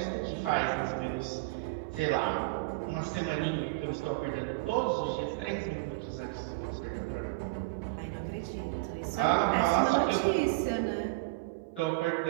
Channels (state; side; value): quieter; left; 23.6 dB